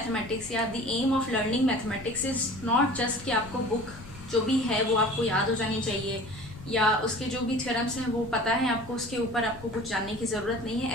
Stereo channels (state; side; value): noise; left; rumble, 16 dB below the sound